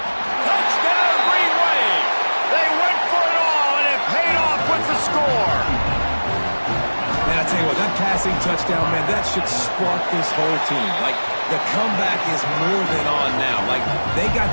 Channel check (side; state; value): both; inverted; correlation -1.00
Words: Touchdown, Green Wave. They went for it all, and it paid off with the score. Man, I tell you what, that passing touchdown, man, that should spark this whole team. Like, the comeback is more than on now. Like, they got